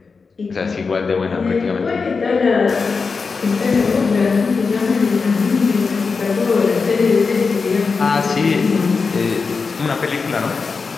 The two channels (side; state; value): right; quieter; 4.8 dB